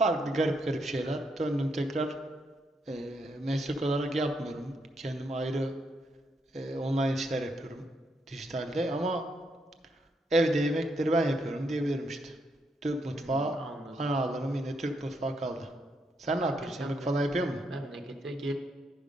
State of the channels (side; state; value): both; normal; correlation 0.78